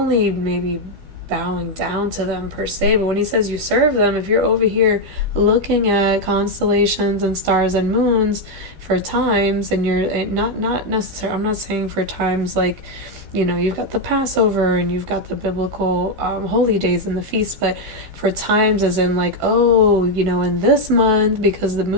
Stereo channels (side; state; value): left; late; 12 ms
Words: maybe bowing down to them per se, but when he says you serve them, if you're over here looking at constellations and stars and moons for times, and you're not necessarily, I'm not saying for times like you've got the Passover and you've got the biblical holy days and the feasts, but for times as in like, oh, in this month, because the